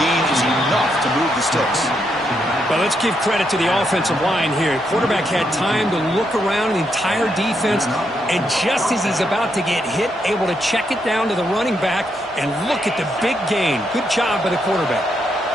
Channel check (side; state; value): both; normal; correlation 0.79